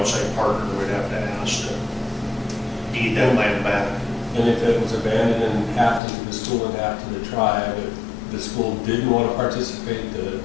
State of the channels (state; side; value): drops out; right; at 6.0 s